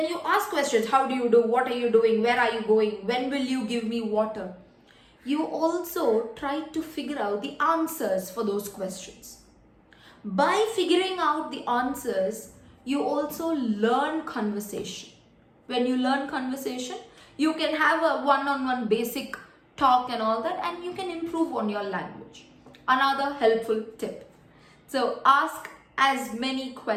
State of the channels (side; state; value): both; identical; correlation 1.00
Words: you ask questions, how do you do? What are you doing? Where are you going? When will you give me water? You also try to figure out the answers for those questions. By figuring out the answers, you also learn conversation. When you learn conversation, you can have a one-on-one basic talk and all that, and you can improve on your language. Another helpful tip. So ask as many